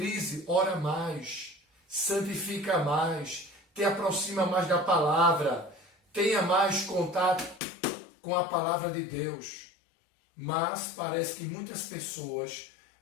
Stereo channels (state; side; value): drops out; right; at 7.6 s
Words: ora mais, santifica mais, te aproxima mais da palavra, tenha mais contato com a palavra de Deus. Mas parece que muitas pessoas,